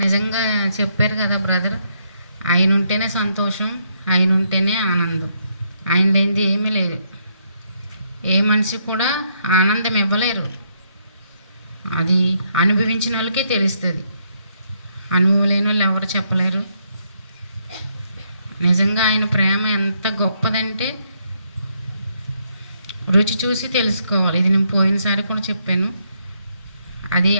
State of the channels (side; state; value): both; inverted; correlation -0.75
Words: నిజంగా చెప్పారు కదా బ్రదర్, ఆయన ఉంటేనే సంతోషం, ఆయన ఉంటేనే ఆనందం. ఆయన లేనిది ఏమీ లేదు. ఏ మనిషి కూడా ఆనందం ఇవ్వలేరు. అది అనుభవించిన వాళ్ళకే తెలుస్తుంది. అనుభవం లేని వాళ్ళు ఎవరు చెప్పలేరు. నిజంగా ఆయన ప్రేమ ఎంత గొప్పదంటే రుచి చూసి తెలుసుకోవాలి. ఇది నేను పోయినసారి కూడా చెప్పాను. అది